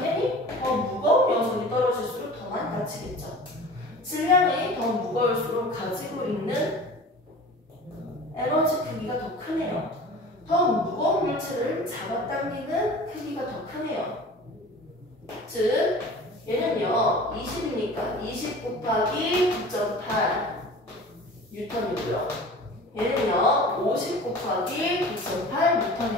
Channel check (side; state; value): both; normal; correlation 0.40